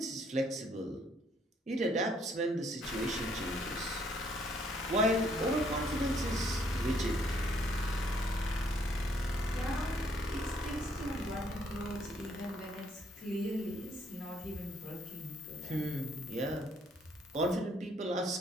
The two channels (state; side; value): normal; both; correlation 0.67